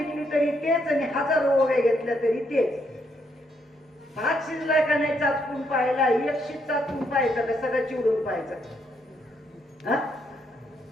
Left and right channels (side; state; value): both; normal; correlation 0.75